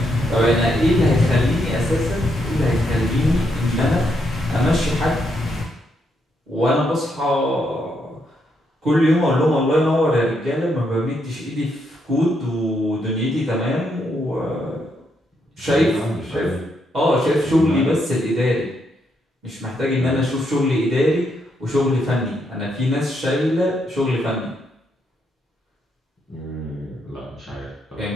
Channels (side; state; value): both; normal; correlation 0.78